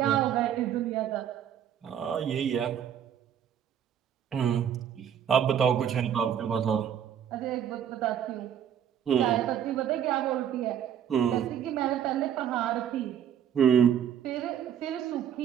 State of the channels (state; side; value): quieter; left; 9.3 dB